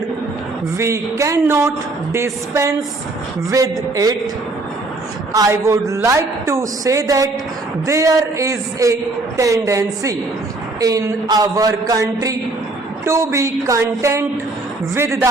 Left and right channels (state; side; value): quieter; left; 3.1 dB